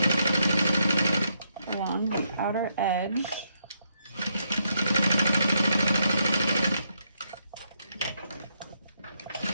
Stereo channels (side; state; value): both; inverted; correlation -0.78